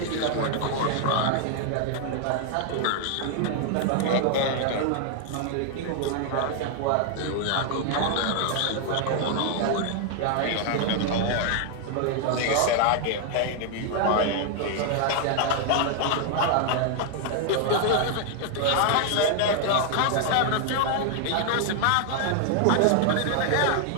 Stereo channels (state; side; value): different; both; correlation 0.00